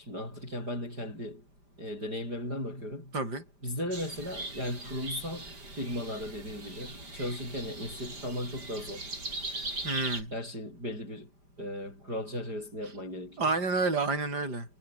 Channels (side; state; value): left; late; 5.0 ms